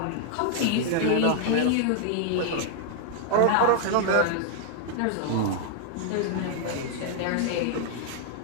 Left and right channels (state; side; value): different; both; correlation -0.01